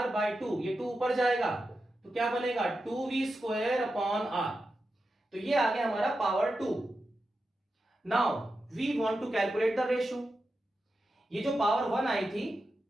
बाई 2, ये 2 ऊपर जाएगा तो क्या बनेगा? 2V square upon R। तो ये आ गया हमारा power 2। Now we want to calculate the ratio. ये जो पावर 1 आई थी,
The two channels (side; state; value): both; normal; correlation 0.90